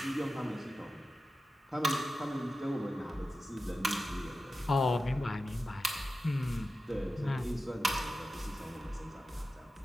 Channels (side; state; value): both; normal; correlation 0.92